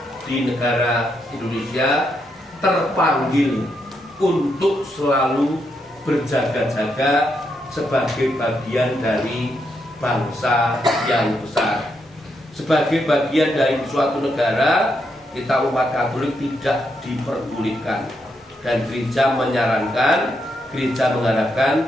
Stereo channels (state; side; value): normal; both; correlation 0.80